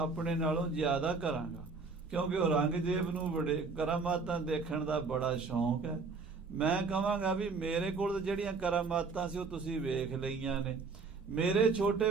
ਨਾਲੋਂ ਜ਼ਿਆਦਾ ਕਰਾਂਗਾ, ਕਿਉਂਕਿ ਔਰੰਗਜ਼ੇਬ ਨੂੰ ਬੜੇ ਕਰਾਮਾਤਾਂ ਦੇਖਣ ਦਾ ਬੜਾ ਸ਼ੌਂਕ ਹੈ। ਮੈਂ ਕਹਾਂਗਾ ਵੀ ਮੇਰੇ ਕੋਲ ਜਿਹੜੀਆਂ ਕਰਾਮਾਤਾਂ ਸੀ ਉਹ ਤੁਸੀਂ ਵੇਖ ਲਈਆਂ ਨੇ, ਮੇਰੇ ਛੋਟੇ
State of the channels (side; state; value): left; quieter; 4.5 dB